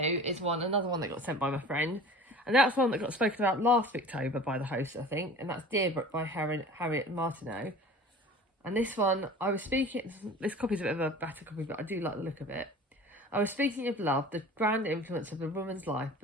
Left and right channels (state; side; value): normal; both; correlation 0.41